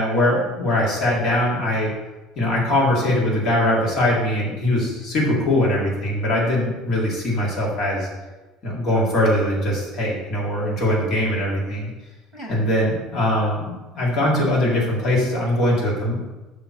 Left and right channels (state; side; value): normal; both; correlation 0.44